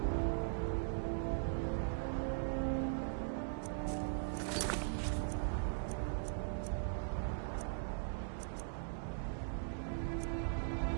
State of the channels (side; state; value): left; silent; digital silence